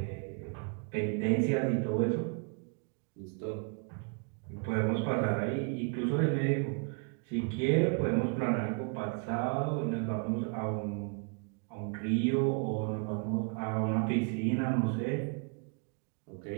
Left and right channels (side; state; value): left; quieter; 38.1 dB